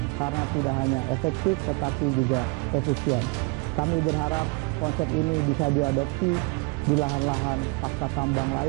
karena tidak hanya efektif tetapi juga efisien. Kami berharap konsep ini bisa diadopsi di lahan-lahan pasca tambang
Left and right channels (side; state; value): left; quieter; 27.7 dB